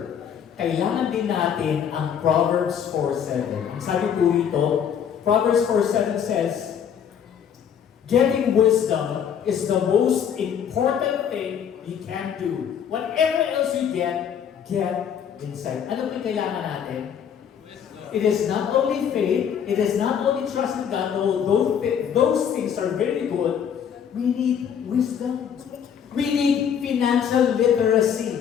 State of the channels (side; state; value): right; quieter; 8.2 dB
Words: Kailangan din natin ang Proverbs 4:7. Ang sabi po rito, Proverbs 4:7 says, getting wisdom is the most important thing you can do. Whatever else you get insight. Ano po yung kailangan natin? It is not only faith, it is not only trust in God, although those things are very good, we need wisdom. We need financial